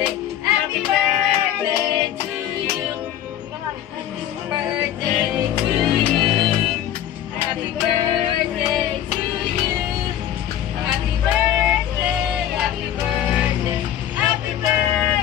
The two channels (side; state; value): right; quieter; 11.1 dB